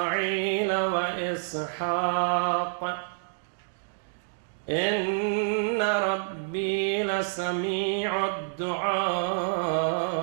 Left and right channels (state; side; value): silent; left; digital silence